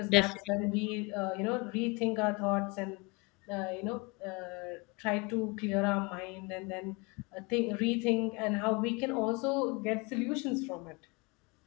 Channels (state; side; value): quieter; right; 26.7 dB